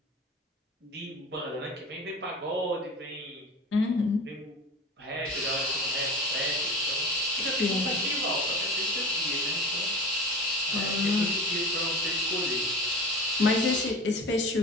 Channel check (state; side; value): normal; both; correlation 0.33